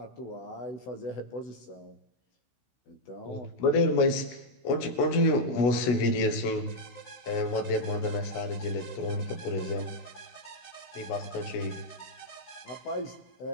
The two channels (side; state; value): right; late; 16 ms